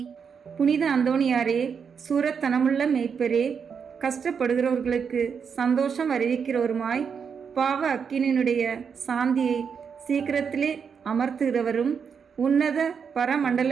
புனித அந்தோணியாரே, சூரத்தனமுள்ள மேய்ப்பரே, கஷ்டப்படுகிறவர்களுக்கு சந்தோஷம் அறிவிக்கிறவருமாய் பாவ அக்கினியினுடைய சாந்தியை சீக்கிரத்திலே அமர்த்துகிறவரும் உன்னத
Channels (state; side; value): quieter; left; 6.5 dB